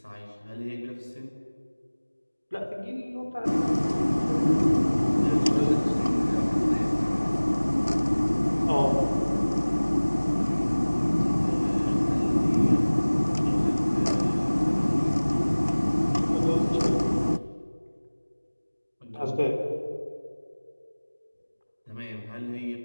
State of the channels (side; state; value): both; inverted; correlation -1.00